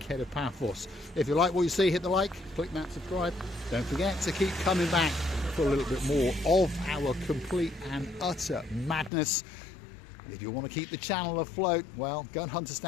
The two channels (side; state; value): right; drops out; at 9.1 s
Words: Paphos. If you like what you see, hit the like, click that subscribe. Don't forget to keep coming back for a little bit more of our complete and utter madness. If you want to keep the channel afloat, well, go and hunt us